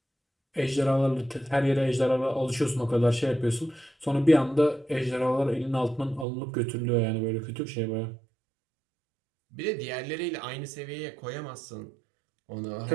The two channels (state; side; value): drops out; left; at 6.2 s